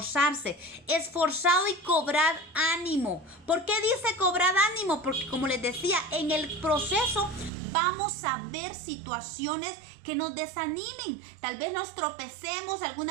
Esforzado y cobrad ánimo. ¿Por qué dice cobrad ánimo? Porque como les decía, en el proceso vamos a ver situaciones que nos desanimen. Tal vez nos tropecemos,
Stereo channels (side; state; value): left; drops out; at 7.5 s